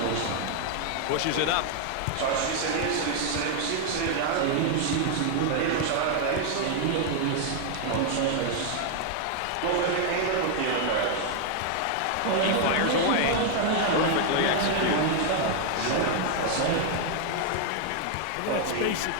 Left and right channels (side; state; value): both; different; correlation 0.00